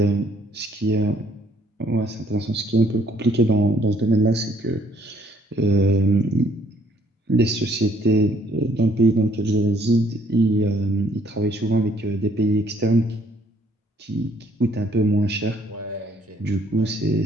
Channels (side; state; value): both; normal; correlation 0.64